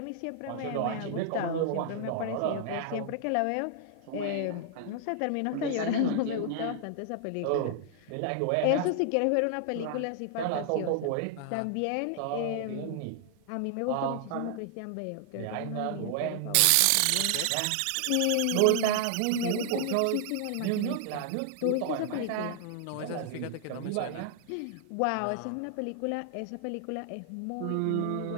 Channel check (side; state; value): both; different; correlation 0.00